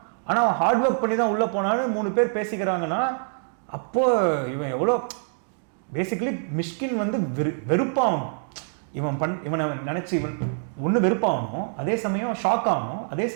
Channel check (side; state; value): left; silent; digital silence